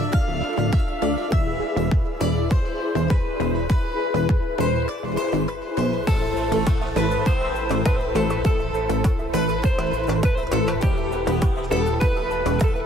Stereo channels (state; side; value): normal; both; correlation 0.69